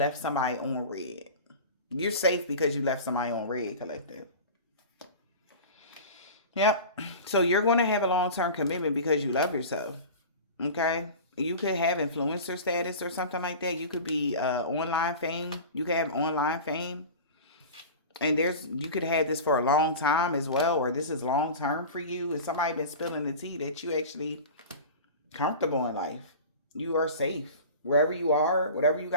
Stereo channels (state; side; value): inverted; both; correlation -0.34